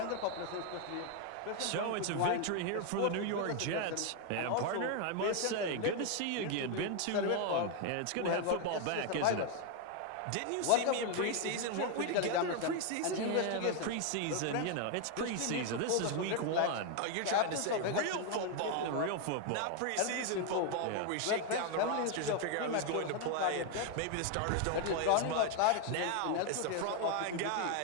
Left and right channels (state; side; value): different; both; correlation 0.01